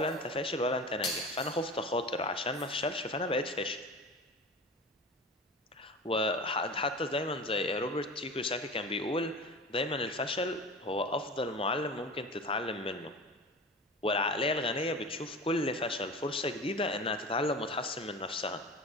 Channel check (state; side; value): normal; both; correlation 0.33